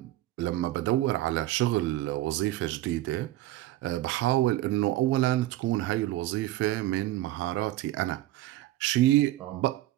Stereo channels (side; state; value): left; quieter; 15.7 dB